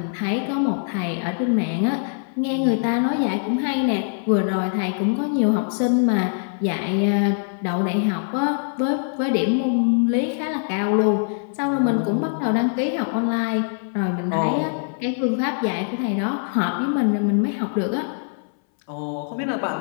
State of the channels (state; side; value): silent; right; 62 dB below the other